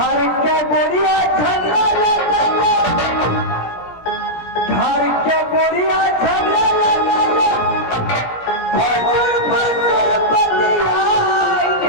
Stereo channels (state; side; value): late; right; 17 ms